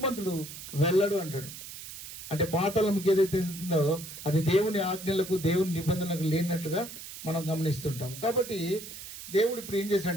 వెళ్ళడు అంటాడు. అంటే పాతాళంకి ఏదైతే వెళ్తుందో అది దేవుని ఆజ్ఞలకు దేవుని నిబంధనలకు లేనట్లుగా మనం గమనిస్తుంటాం. కాబట్టి దేవుడు ఇప్పుడు ఏం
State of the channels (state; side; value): noise; right; hiss, 12 dB below the sound